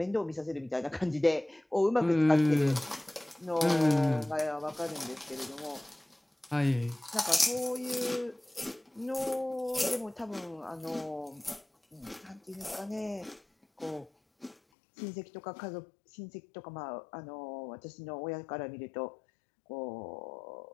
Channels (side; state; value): right; drops out; at 14.6 s